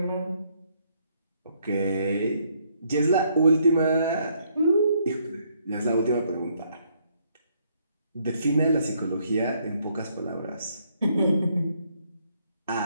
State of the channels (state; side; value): inverted; both; correlation -0.70